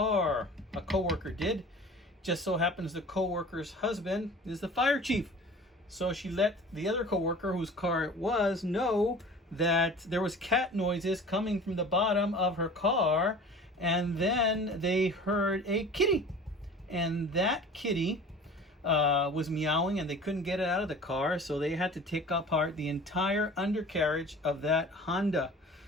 A coworker did. Just so happens the coworker's husband is the fire chief. So she let the other coworker, whose car it was, know that there was cat noises coming from the bottom of her car. And then they heard a kitty. And that kitty was meowing, and they couldn't get it out of the car. So they had to take apart the entire undercarriage of that Honda.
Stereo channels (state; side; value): normal; both; correlation 0.42